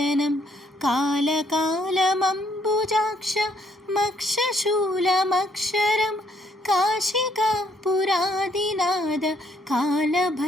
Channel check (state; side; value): normal; both; correlation 0.69